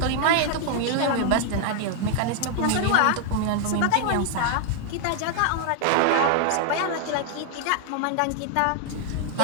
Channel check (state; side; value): different; both; correlation 0.00